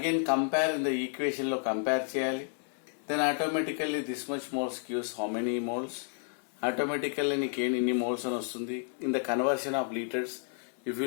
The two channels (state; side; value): silent; right; 57 dB below the other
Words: compare in the equation లో కంపేర్ చేయాలి. Then automatically this much moles gives how many moles. Automatically నీకు ఇన్ని moles అని వస్తుంది. In the conversion of litres if you